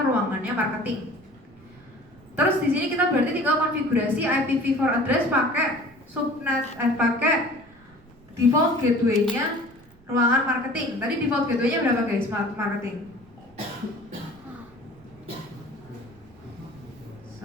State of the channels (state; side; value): noise; right; rumble, 27 dB below the sound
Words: ruangannya marketing. Terus di sini kita berarti tinggal konfigurasi IPv4 address pakai subnet pakai default gateway-nya ruangan marketing. Tadi default gateway-nya berapa guys? Marketing.